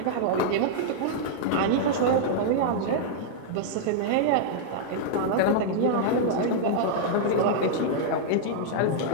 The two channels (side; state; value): both; different; correlation -0.01